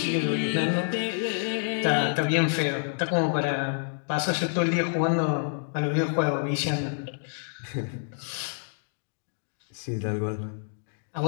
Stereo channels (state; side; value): silent; right; digital silence